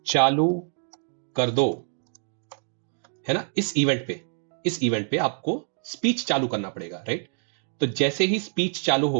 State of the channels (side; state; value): left; silent; 61 dB below the other